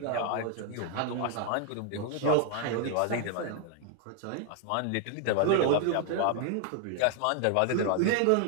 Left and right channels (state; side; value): different; both; correlation 0.00